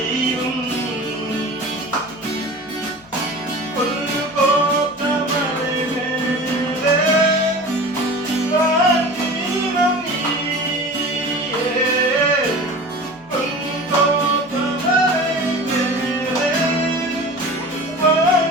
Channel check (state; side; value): noise; left; hum, 28 dB below the sound